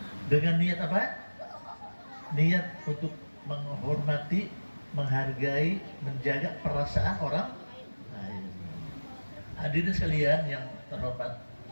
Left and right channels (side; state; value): both; inverted; correlation -1.00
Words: Dengan niat apa? Niat untuk menghormati, menghargai, menjaga perasaan orang lain. Hadirin sekalian yang terhormat,